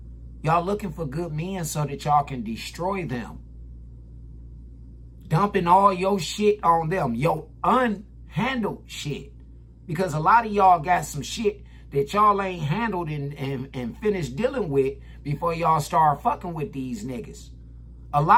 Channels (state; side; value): identical; both; correlation 1.00